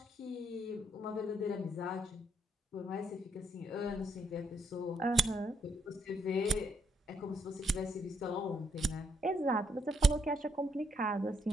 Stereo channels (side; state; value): both; normal; correlation 0.73